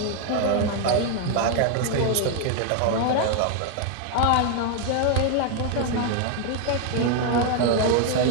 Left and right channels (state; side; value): different; both; correlation 0.01